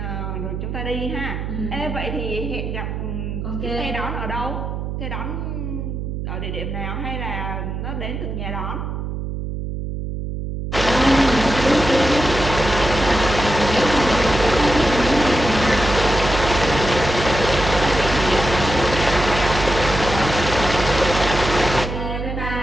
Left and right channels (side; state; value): right; noise; hum, 5 dB below the sound